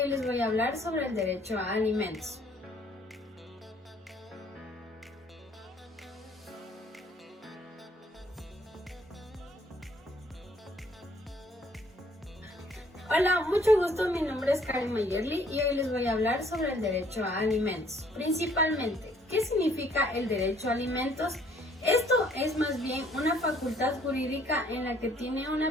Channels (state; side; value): normal; both; correlation 0.62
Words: les voy a hablar sobre el derecho a alimentos. Hola, mucho gusto, mi nombre es Karen Mayerly y hoy les voy a hablar sobre el derecho a alimentos. Principalmente, ¿qué significa el derecho a alimentos? Esto es más bien una facultad jurídica en la que tiene